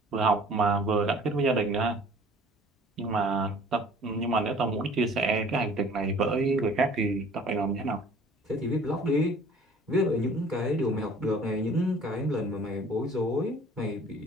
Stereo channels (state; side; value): normal; both; correlation 0.51